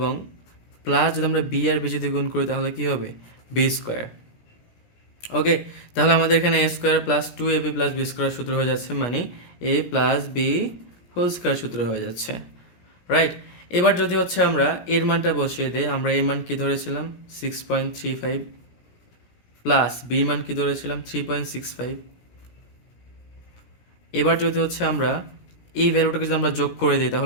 প্লাস যদি আমরা বি আর বি যদি গুণ করি তাহলে কি হবে বি স্কোয়ার। ওকে, তাহলে আমাদের এখানে a square plus 2ab plus b square সূত্র হয়ে যাচ্ছে, মানে a plus b whole square সূত্র হয়ে যাচ্ছে, রাইট। এবার যদি হচ্ছে আমরা এর মানটা বসিয়ে দেই, আমরা এর মান কি ধরেছিলাম 6.35, প্লাস বি মান কি ধরেছিলাম 3.65। এবার যদি হচ্ছে আমরা এই ভ্যালুটাকে যদি আমরা যোগ করে দিই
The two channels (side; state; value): right; late; 17 ms